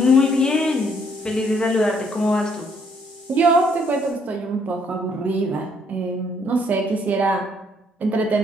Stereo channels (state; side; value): normal; both; correlation 0.68